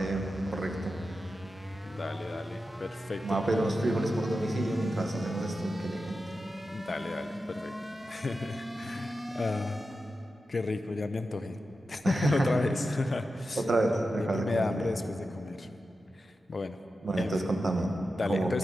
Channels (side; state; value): both; normal; correlation 0.91